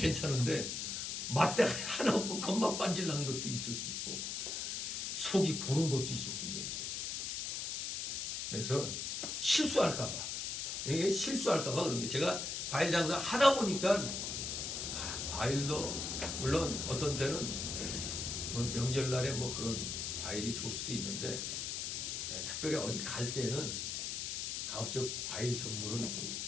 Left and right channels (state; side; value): noise; left; hiss, 3 dB below the sound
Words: 맛대가 하나 없고 겉만 반질난 것도 있을 수 있고 속이 고른 것도 있을 수 있는데, 그래서 실수할까봐, 이게 실수할까봐 그런 게, 제가 과일 장사 하다 보니까 과일도 물론 어떤 때는 뭐 명절날에 뭐 그런 과일이 좋을 수도 있는데, 특별히 어디 갈 때는 가급적 과일 선물은 좀